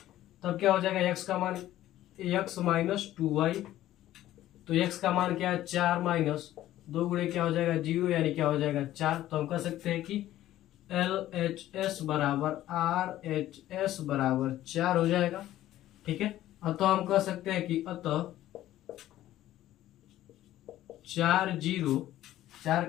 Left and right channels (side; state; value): right; quieter; 13.9 dB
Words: तब क्या हो जाएगा x का मान x माइनस 2y। तो x का मान क्या है 4 माइनस 2 गुणे क्या हो जाएगा 0, यानी क्या हो जाएगा 4। तो हम कह सकते हैं कि LHS बराबर RHS बराबर 4 हो जाएगा, ठीक है। तो हम कह सकते हैं कि अतः